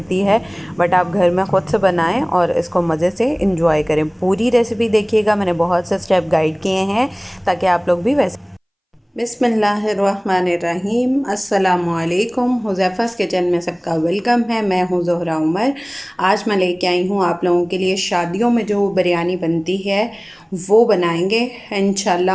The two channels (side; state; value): both; identical; correlation 1.00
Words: है, बट आप घर में ख़ुद से बनाएं और इसको मज़े से इंजॉय करें। पूरी रेसिपी देखिएगा, मैंने बहुत से स्टेप गाइड किए हैं ताकि आप लोग भी वैसे। बिस्मिल्लाहिर्रहमानिर्रहीम, अस्सलामुअलैकुम। हुज़ैफ़ा's किचन में सबका वेलकम है। मैं हूँ ज़ोहरा उमर। आज मैं लेके आई हूँ आप लोगों के लिए शादियों में जो बिरयानी बनती है वो बनाएंगे